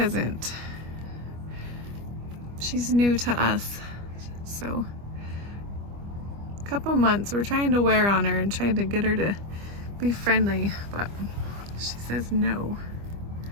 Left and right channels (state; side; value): late; left; 25 ms